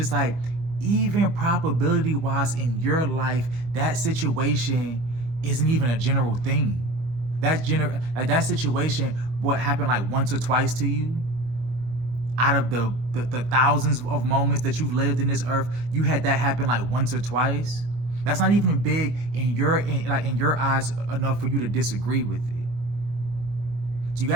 like, even probability wise in your life, that situation isn't even a general thing. That situation, what happened like once or twice to you, out of the thousands of moments that you've lived in this earth, you had that happen like once or twice. That's not even big in your eyes enough for you to disagree with it. So you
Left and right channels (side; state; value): left; late; 24 ms